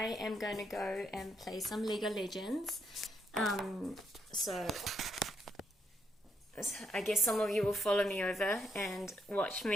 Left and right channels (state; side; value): normal; both; correlation 0.77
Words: am going to go and play some Lego Legends. So I guess some of you will follow me over and watch